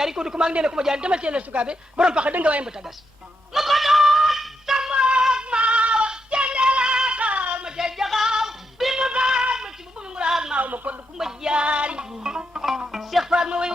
ko di Kumba ak Ndéla Kumba Jaari demal seen la sukaabe borom paxa dënga waay mbata gas ma ko doon samboog maaw cendelakal ma cey jaxaw bi mu baat ma ci bu mu nguraag maaw ma ko di Kumba Jaari Cheikh Fall ma way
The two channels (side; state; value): both; normal; correlation 0.83